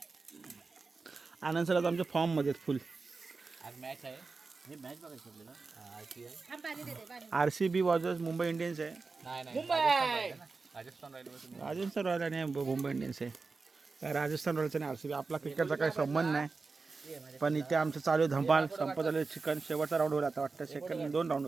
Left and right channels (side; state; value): left; quieter; 4.2 dB